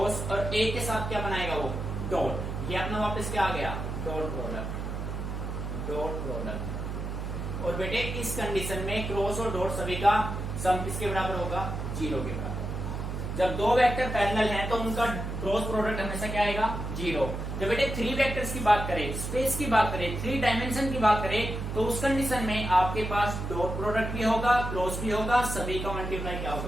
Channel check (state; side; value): noise; right; hum, 5 dB below the sound